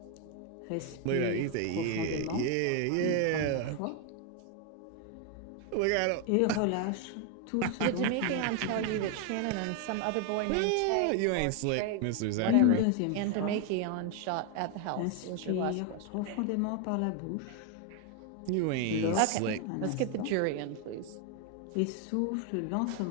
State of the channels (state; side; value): different; both; correlation 0.01